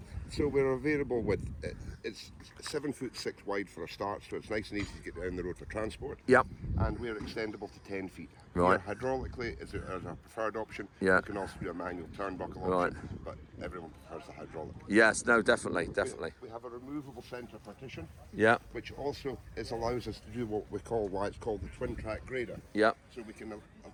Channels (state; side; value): identical; both; correlation 1.00